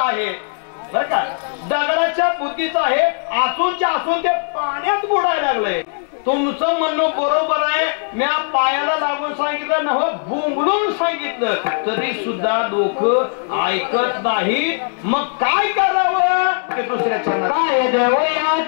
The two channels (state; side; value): silent; right; digital silence